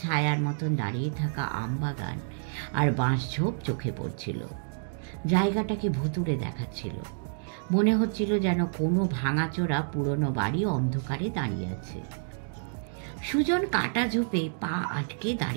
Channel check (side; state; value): left; silent; digital silence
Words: ছায়ার মতন দাঁড়িয়ে থাকা আমবাগান আর বাঁশঝোপ চোখে পড়ছিল। জায়গাটাকে ভুতুড়ে দেখাচ্ছিল। মনে হচ্ছিল যেন কোনো ভাঙাচোরা পুরনো বাড়ি অন্ধকারে দাঁড়িয়ে আছে। সুজন কাটা ঝোপে পা আটকে